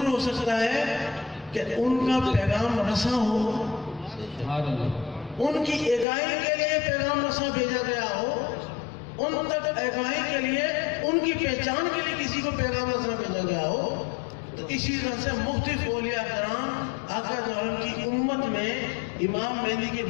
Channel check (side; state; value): right; drops out; at 6.1 s